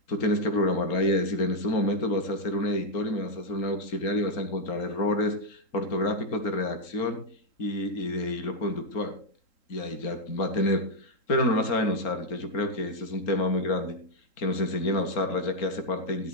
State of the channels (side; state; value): right; late; 3.8 ms